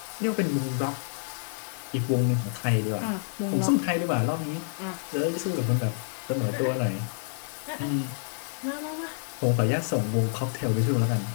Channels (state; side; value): silent; right; digital silence